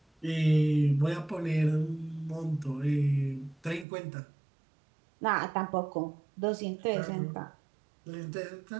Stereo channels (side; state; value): left; drops out; at 3.9 s